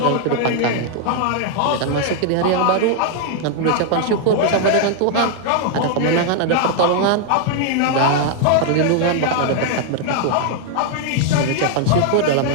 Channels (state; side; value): different; both; correlation 0.00